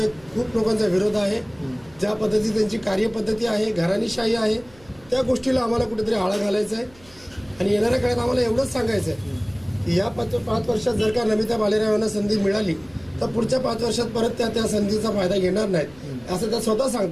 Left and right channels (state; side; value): noise; right; hum, 26 dB below the sound